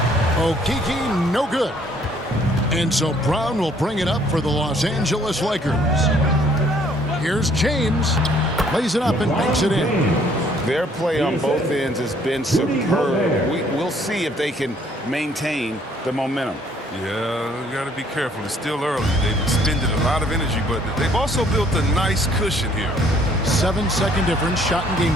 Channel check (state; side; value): normal; both; correlation 0.62